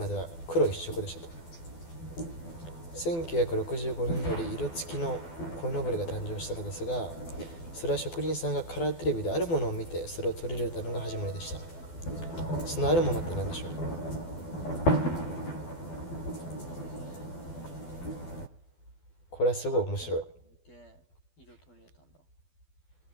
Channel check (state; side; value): late; right; 12 ms